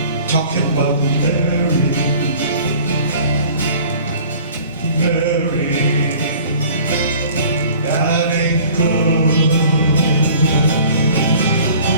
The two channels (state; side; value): inverted; both; correlation -0.48